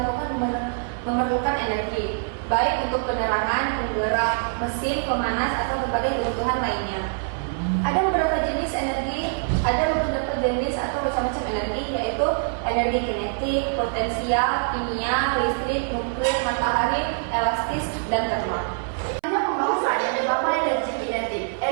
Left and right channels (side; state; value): left; silent; 58 dB below the other